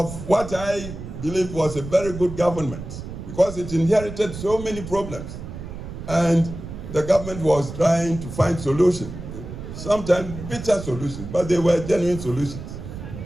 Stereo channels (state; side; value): noise; right; rumble, 10 dB below the sound